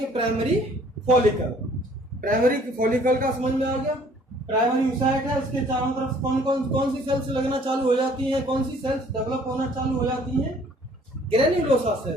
Primary follicle. प्राइमरी फॉलिकल का समझ में आ गया? प्राइमरी oocyte है, उसके चारों तरफ कौन सी सेल्स लगना चालू हो जाती हैं? कौन सी सेल्स डेवलप होना चालू हो जाती हैं? Granulosa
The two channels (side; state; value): both; normal; correlation 0.57